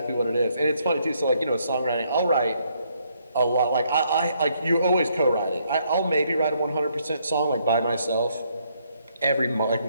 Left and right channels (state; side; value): inverted; both; correlation -0.72